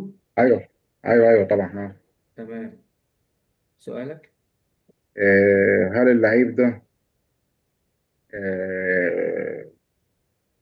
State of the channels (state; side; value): identical; both; correlation 1.00